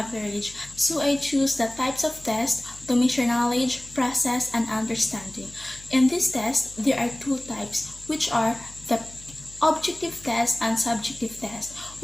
So I choose the types of tests to measure knowledge, process, and understanding. In this test, there are two types, which are the objective test and subjective test.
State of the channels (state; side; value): noise; left; hum, 20 dB below the sound